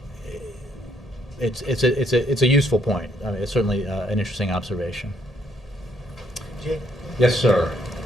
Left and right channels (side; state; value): both; normal; correlation 0.71